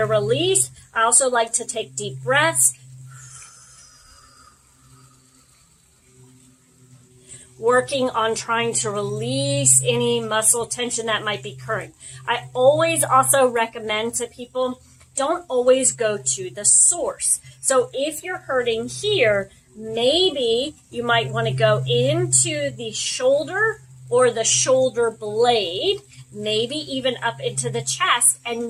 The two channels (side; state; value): both; identical; correlation 1.00